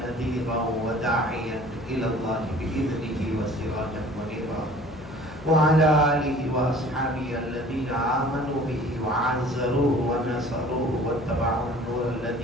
وداعيا إلى الله بإذنه وسراجا منيرا وعلى آله وأصحابه الذين آمنوا به وعزروه ونصروه واتبعوا النور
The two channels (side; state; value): left; noise; hum, 16 dB below the sound